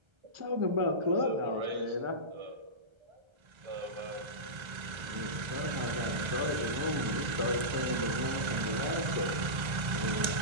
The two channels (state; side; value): late; left; 1.3 ms